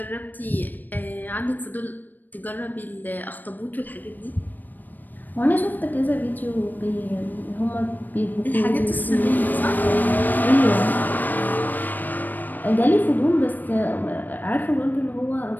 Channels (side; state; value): right; late; 0.088 ms